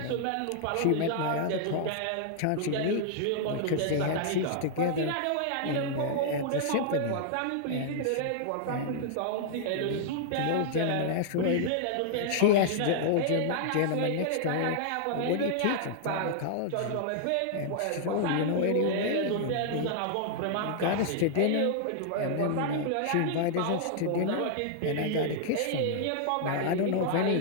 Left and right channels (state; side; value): different; both; correlation -0.01